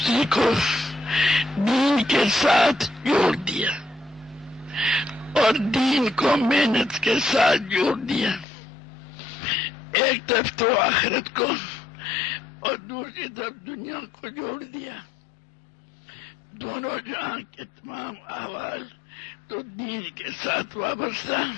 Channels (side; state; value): right; drops out; at 8.5 s